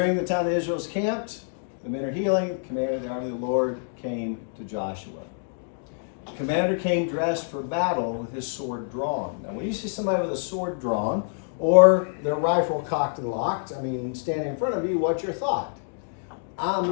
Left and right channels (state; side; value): silent; right; digital silence